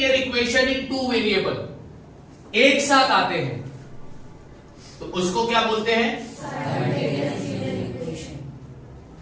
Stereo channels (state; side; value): identical; both; correlation 1.00